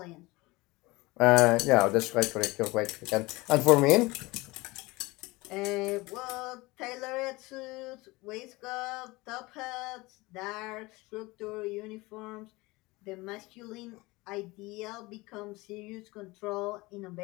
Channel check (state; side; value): quieter; right; 22.2 dB